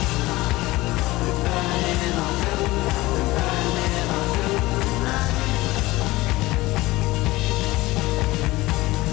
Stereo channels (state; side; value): quieter; right; 19.4 dB